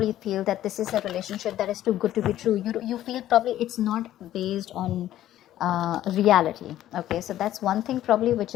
feel that this is a relationship that is too good to be true. You feel probably it's not based on reality, okay? So that's one thing probably which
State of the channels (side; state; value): right; quieter; 13.0 dB